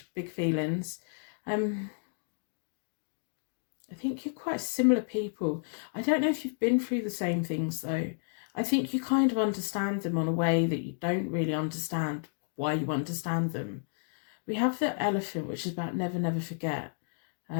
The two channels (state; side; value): silent; right; digital silence